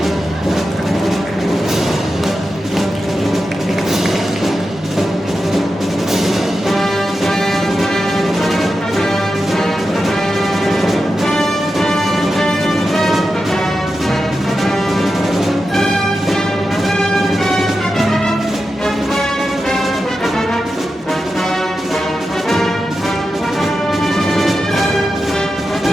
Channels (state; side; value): normal; both; correlation 0.90